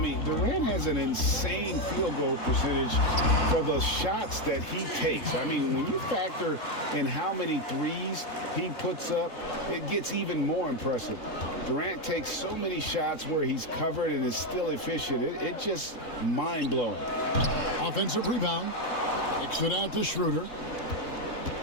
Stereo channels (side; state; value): right; late; 3.7 ms